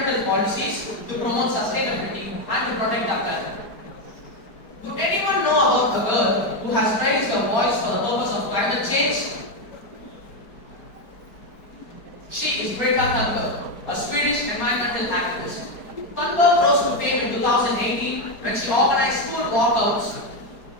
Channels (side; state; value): right; late; 4.7 ms